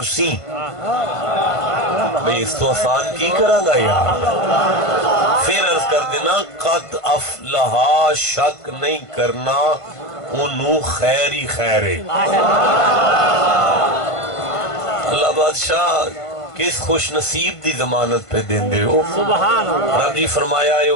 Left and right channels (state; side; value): late; right; 1.5 ms